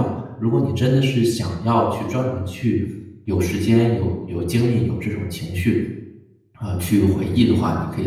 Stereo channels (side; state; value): both; identical; correlation 1.00